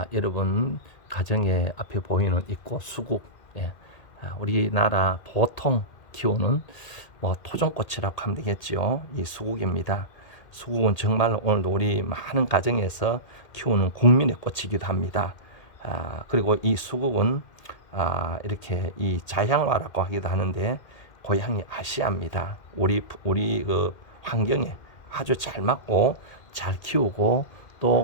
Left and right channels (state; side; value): late; right; 2.1 ms